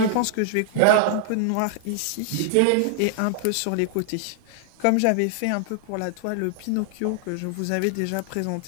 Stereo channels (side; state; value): both; different; correlation 0.00